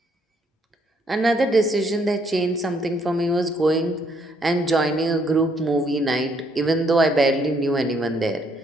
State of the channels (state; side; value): normal; both; correlation 0.69